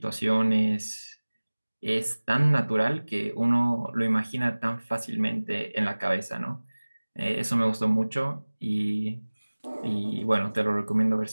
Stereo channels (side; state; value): both; inverted; correlation -1.00